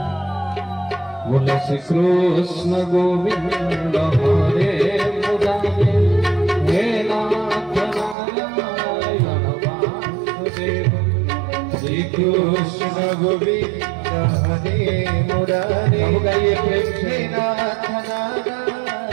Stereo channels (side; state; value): left; drops out; at 8.2 s